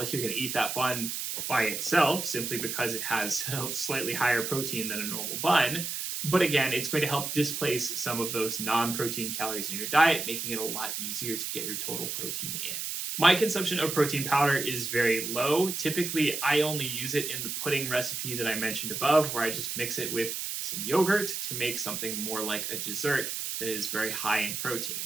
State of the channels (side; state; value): right; noise; hiss, 4 dB below the sound